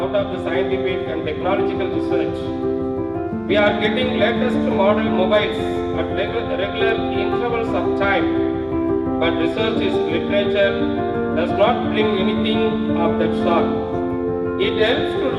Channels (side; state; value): both; identical; correlation 1.00